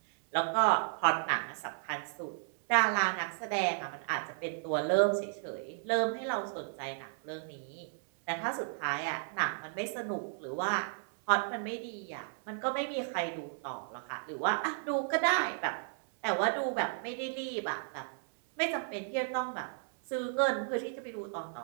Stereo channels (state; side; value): silent; left; 55 dB below the other